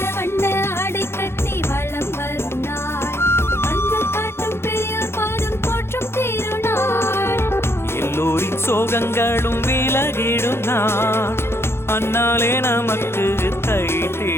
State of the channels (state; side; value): late; right; 0.12 ms